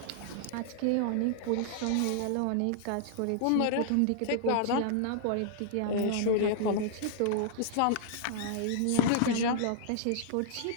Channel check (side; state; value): both; different; correlation -0.01